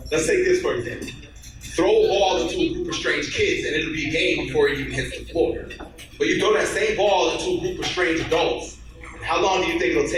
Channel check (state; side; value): identical; both; correlation 1.00